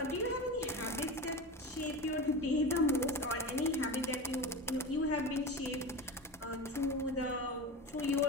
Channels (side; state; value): both; normal; correlation 0.26